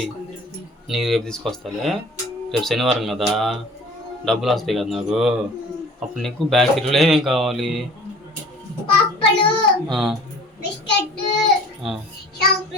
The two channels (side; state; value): both; normal; correlation 0.46